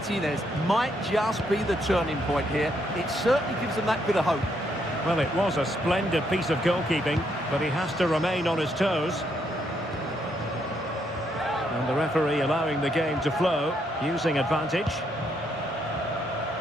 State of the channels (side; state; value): both; normal; correlation 0.75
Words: might just be the turning point here. It certainly gives them that bit of hope. Well, it was a splendid piece of goalkeeping, but he has to remain on his toes. And the referee allowing the game to flow, using advantage.